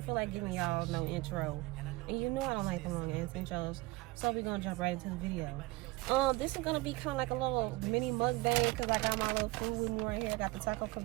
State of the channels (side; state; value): left; quieter; 21.5 dB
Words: feel like giving y'all no intro, and you know I don't like the long ass intros, so we're gonna jump right into the video. This is gonna be kind of like a little mini mukbang because I got my little food with me right here. I got the Taco